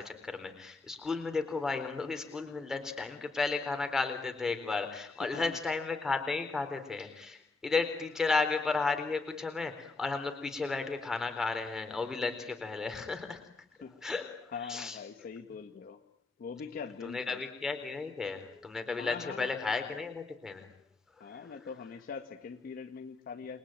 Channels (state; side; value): quieter; right; 3.8 dB